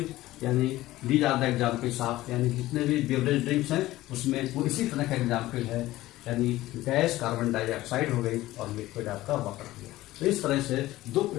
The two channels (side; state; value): right; quieter; 16.7 dB